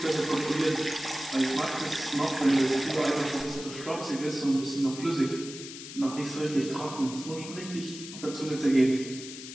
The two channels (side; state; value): left; noise; hiss, 12 dB below the sound